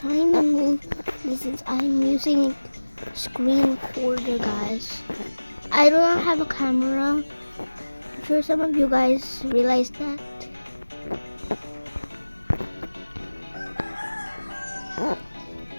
to move this since I'm using screen recorder, guys. I do not have a camera. I'm sure some of you guys realize that.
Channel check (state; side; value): inverted; both; correlation -1.00